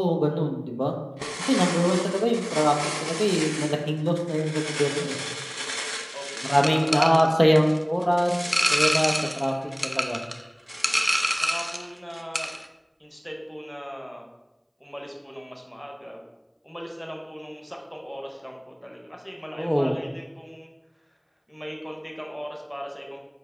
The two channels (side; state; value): both; identical; correlation 1.00